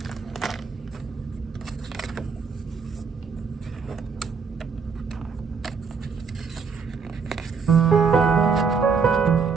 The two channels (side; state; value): left; quieter; 5.6 dB